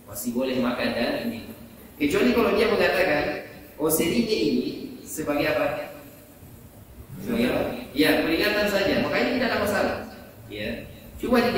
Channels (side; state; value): both; identical; correlation 1.00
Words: Kecuali kalau dia mengatakan, oh, sirine ini sebagai apa? Ya, peringatan saja. Makanya tidak ada masalah. Ya. Cuma di